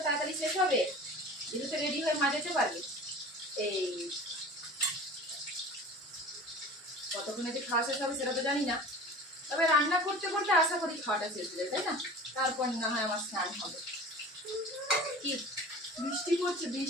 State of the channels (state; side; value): normal; both; correlation 0.39